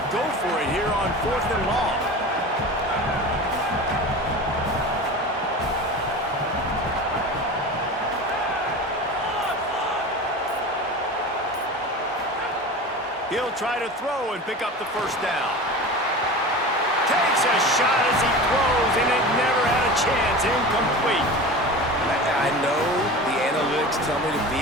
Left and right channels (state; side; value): normal; both; correlation 0.32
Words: go for it here on fourth and long. He'll try to throw and pick up the first down. Takes a shot as he throws, and it never had a chance. Incomplete. I know the analytics tell me to